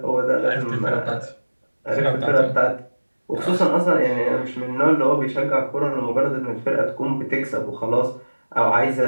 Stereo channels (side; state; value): both; inverted; correlation -1.00